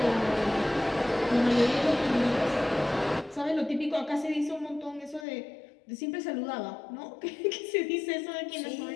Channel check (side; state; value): right; drops out; at 5.2 s